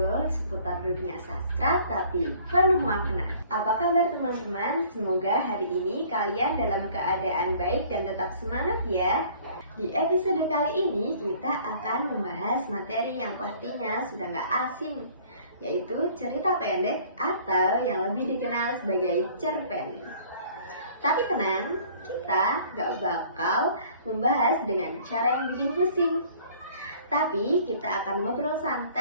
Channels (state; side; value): inverted; both; correlation -0.54